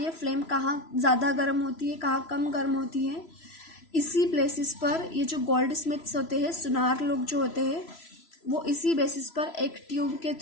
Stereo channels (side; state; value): right; late; 3.0 ms